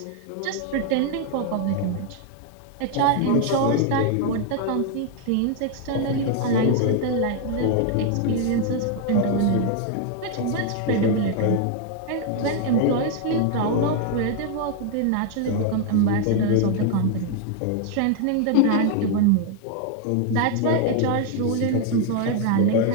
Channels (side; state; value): both; different; correlation 0.00